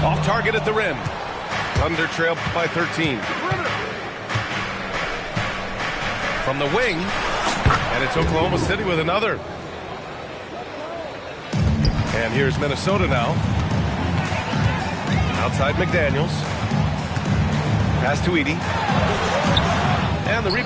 Off target at the rim. Thunder trail by 13. From the wing. And it's Oklahoma City with another. And here's Minnesota now. Outside McDaniels. Pass to Edey. And the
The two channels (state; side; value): identical; both; correlation 1.00